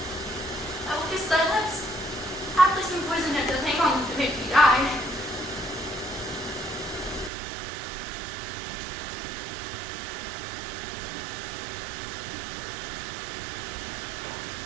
I will kiss thy lips. Haply some poison that doth hang on to make me die.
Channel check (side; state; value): left; drops out; at 7.3 s